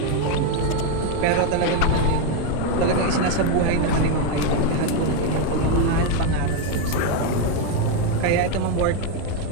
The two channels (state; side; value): different; both; correlation 0.02